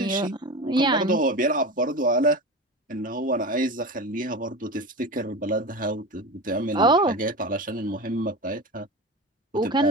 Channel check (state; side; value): normal; both; correlation 0.27